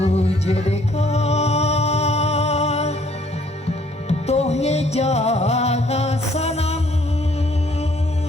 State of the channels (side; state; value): both; normal; correlation 0.62